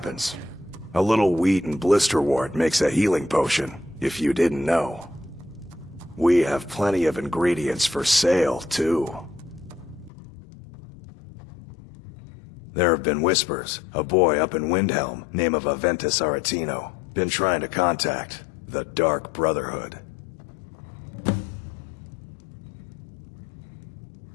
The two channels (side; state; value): right; drops out; at 10.1 s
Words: A little wheat and blisterwort makes a healing potion, if you didn't know. We have plenty of ingredients for sale, too. There have been whispers. A boy up in Windhelm, name of Aventus Aretino, been trying to contact the Dark Brotherhood.